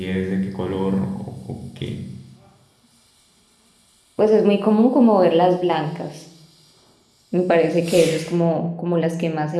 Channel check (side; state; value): both; identical; correlation 1.00